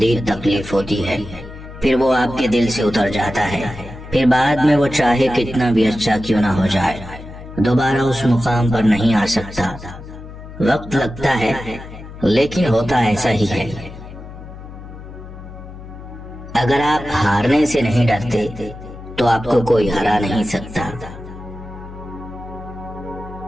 تکلیف ہوتی ہے، پھر وہ آپ کے دل سے اتر جاتا ہے، پھر بعد میں وہ چاہے کتنا بھی اچھا کیوں نہ ہو جائے دوبارہ اس مقام پر نہیں آ سکتا۔ وقت لگتا ہے لیکن ہوتا ایسا ہی ہے۔ اگر آپ ہارنے سے نہیں ڈرتے تو آپ کو کوئی ہرا نہیں سکتا۔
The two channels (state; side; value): noise; left; hum, 14 dB below the sound